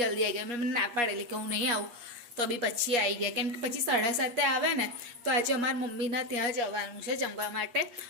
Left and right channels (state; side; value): late; left; 8.4 ms